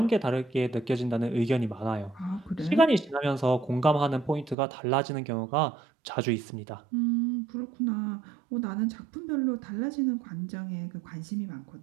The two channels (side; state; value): left; drops out; at 4.5 s